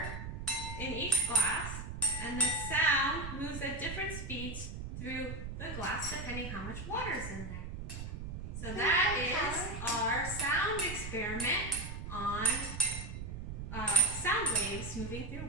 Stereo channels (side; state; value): right; noise; rumble, 7 dB below the sound